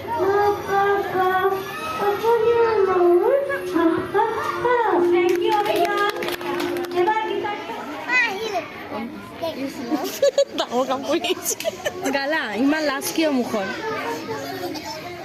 ডাঙৰ কাম কৰি আহিছে। গালা ইমান লাজ কিয় মুখত?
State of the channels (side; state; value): both; identical; correlation 1.00